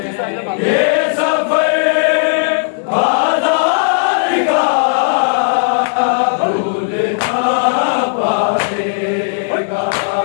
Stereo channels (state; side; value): silent; right; digital silence